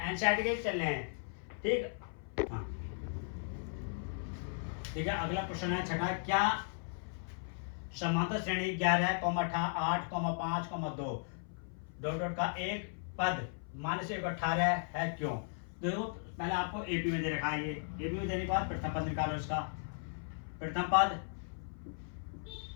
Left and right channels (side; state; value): right; silent; 53 dB below the other